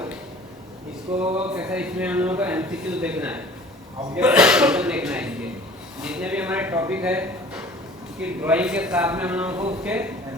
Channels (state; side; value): normal; both; correlation 0.47